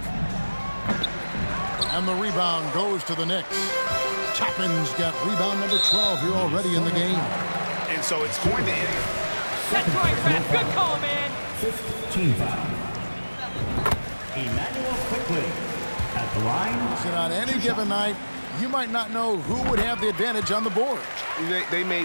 And the rebound goes to the Knicks. Toppin's got rebound number 12 here already in the game. And so it's going to end. That's right, Ref. Good call, man. 15 foul. Emmanuel quickly at the line. So on any given night, you might not know who would have the advantage on the board. They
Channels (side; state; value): both; inverted; correlation -1.00